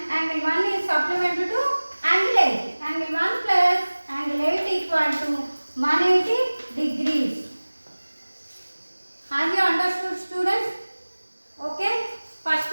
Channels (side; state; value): both; inverted; correlation -1.00